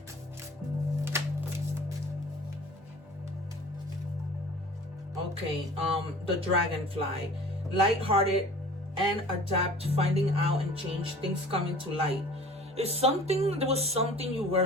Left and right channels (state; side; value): normal; both; correlation 0.45